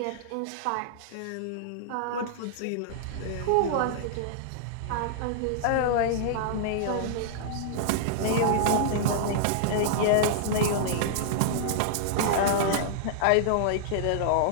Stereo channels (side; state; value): both; different; correlation -0.01